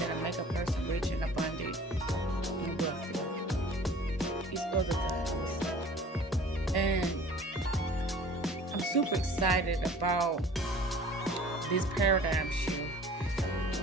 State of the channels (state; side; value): normal; both; correlation 0.47